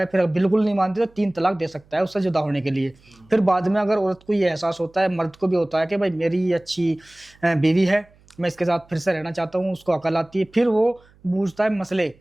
फिर बिल्कुल नहीं मानती तो 3 तलाक दे सकता है उससे जुदा होने के लिए। फिर बाद में अगर औरत को ये एहसास होता है, मर्द को भी होता है कि भाई मेरी ये अच्छी बीवी है, मैं इसके साथ फिर से रहना चाहता हूँ, उसको अकल आती है, फिर वो पूछता है मसले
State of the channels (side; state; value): right; noise; hum, 30 dB below the sound